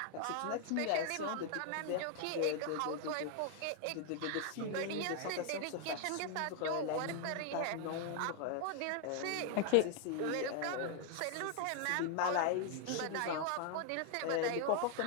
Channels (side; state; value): both; different; correlation 0.00